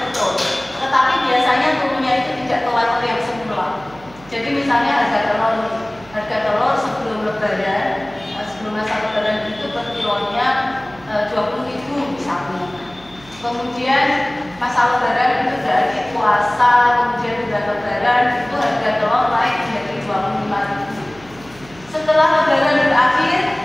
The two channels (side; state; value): right; noise; hum, 23 dB below the sound